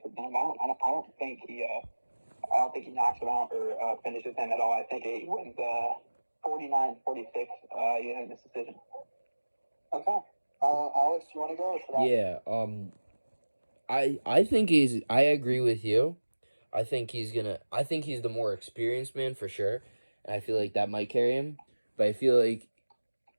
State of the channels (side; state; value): both; inverted; correlation -1.00